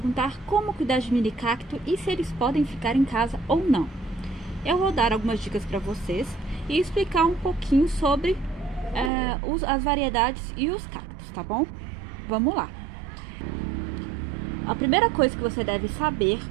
como cuidar de mini cacto e se eles podem ficar em casa ou não. Eu vou dar algumas dicas para vocês e explicar um pouquinho sobre as variedades e os cactos, tá bom? Vamos lá! A primeira coisa que você deve saber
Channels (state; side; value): drops out; left; at 9.1 s